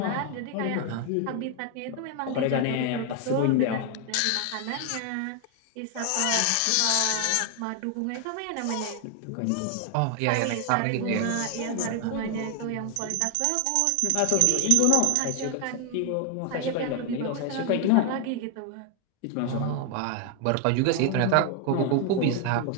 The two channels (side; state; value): both; different; correlation 0.00